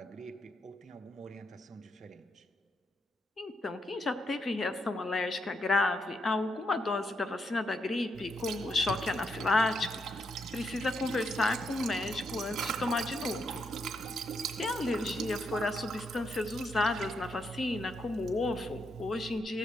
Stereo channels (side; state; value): both; normal; correlation 0.79